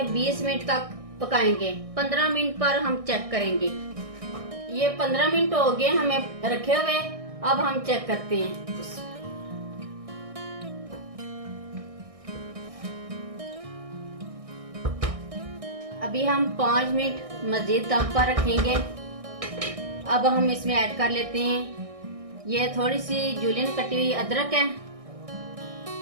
20 मिनट तक पकाएंगे। 15 मिनट पर हम चेक करेंगे। ये 15 मिनट हो गए हमें रखे हुए। अब हम चेक करते हैं। अभी हम 5 मिनट मजीद दम पर रखेंगे। अब हम इसमें ऐड कर लेते हैं ये थोड़ी सी जूलियन कटी हुई अदरक है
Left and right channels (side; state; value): left; late; 1.6 ms